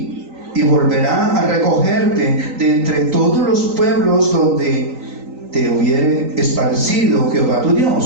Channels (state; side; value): late; left; 3.9 ms